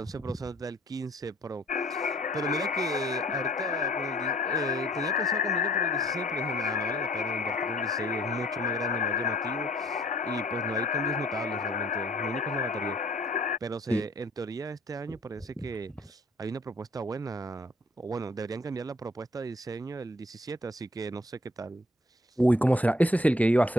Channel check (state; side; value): normal; both; correlation 0.57